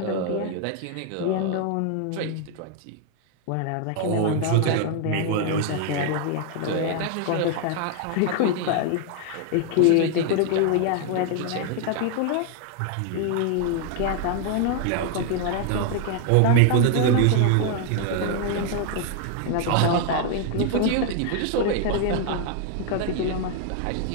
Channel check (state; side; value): different; both; correlation 0.00